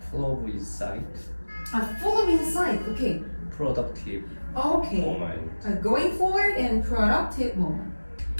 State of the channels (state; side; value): inverted; both; correlation -1.00